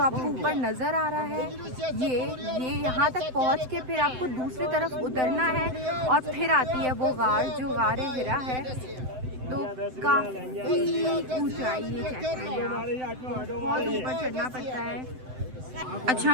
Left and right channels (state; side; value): late; left; 7.8 ms